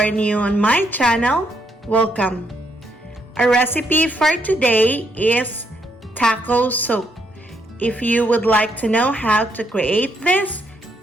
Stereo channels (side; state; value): both; normal; correlation 0.75